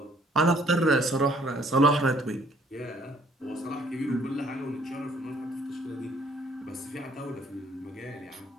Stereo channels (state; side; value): normal; both; correlation 0.62